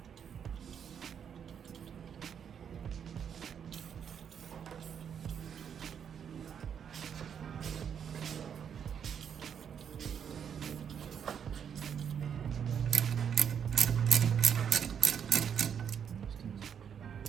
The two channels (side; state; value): left; quieter; 7.9 dB